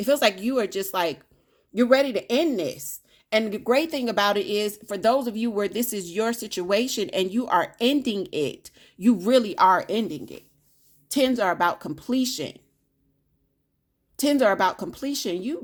feels like you are just like, you're ready to end this. And the great thing about it is, for those of you where this is your situation and you are ending it, you really are ending it. 10s are about completion. 10s are about completion.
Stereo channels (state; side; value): identical; both; correlation 1.00